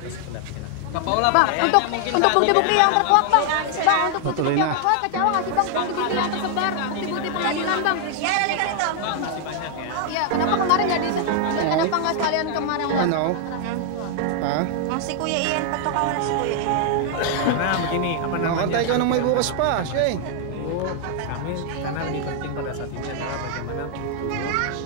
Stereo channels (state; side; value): different; both; correlation 0.00